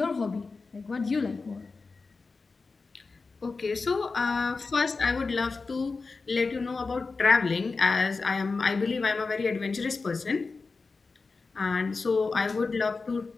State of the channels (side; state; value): right; quieter; 4.2 dB